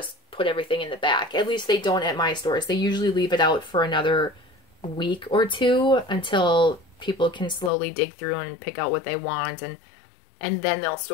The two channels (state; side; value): drops out; right; at 7.7 s